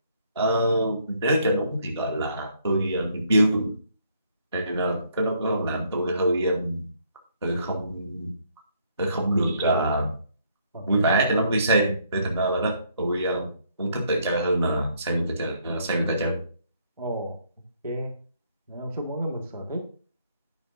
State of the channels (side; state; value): both; inverted; correlation -0.68